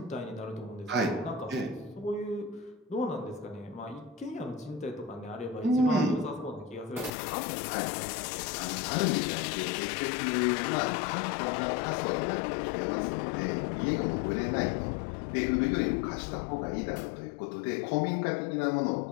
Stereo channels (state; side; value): drops out; right; at 7.1 s